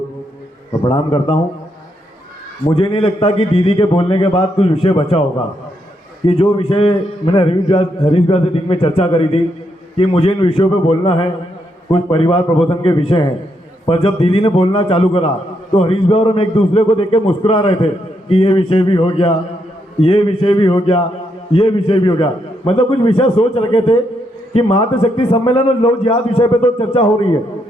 प्रणाम करता हूं। मुझे नहीं लगता कि दीदी के बोलने के बाद कुछ विषय बचा होगा, कि जो विषय मैंने हरीश भैया से दिन में चर्चा करी थी कि मुझे इन विषयों पे बोलना है, कुछ परिवार प्रबोधन के विषय हैं, पर जब दीदी ने बोलना चालू करा तो हरीश भैया और हम एक दूसरे को देख के मुस्कुरा रहे थे कि ये विषय भी हो गया, ये विषय भी हो गया, ये विषय भी हो गया। मतलब कुछ विषय सोच रखे थे कि मातृशक्ति सम्मेलन और लव जिहाद विषय पे तो चर्चा हो रही है,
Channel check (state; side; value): normal; both; correlation 0.78